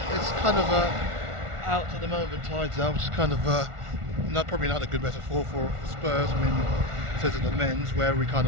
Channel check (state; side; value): late; left; 1.4 ms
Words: of out at the moment, tides out, which is kind of probably not a good metaphor for Spurs. I mean, says it the men's, where we kind